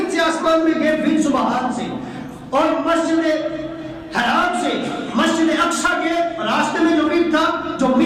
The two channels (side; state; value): both; identical; correlation 1.00